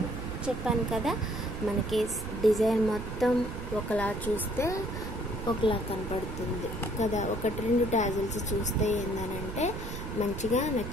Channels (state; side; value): noise; right; rumble, 7 dB below the sound